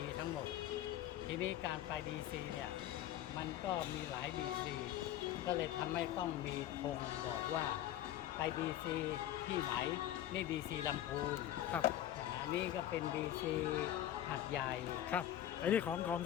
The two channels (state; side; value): quieter; right; 12.2 dB